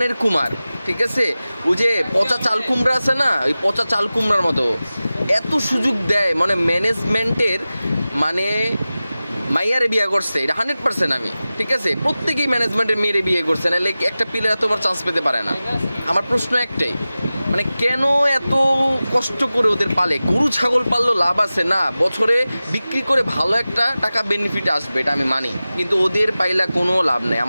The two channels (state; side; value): inverted; both; correlation -0.96